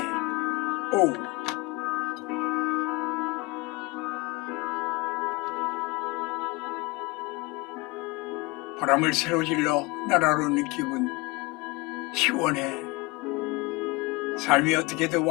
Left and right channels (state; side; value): quieter; right; 23.9 dB